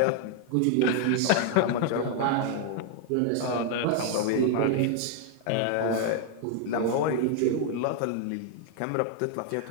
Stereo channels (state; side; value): different; both; correlation 0.00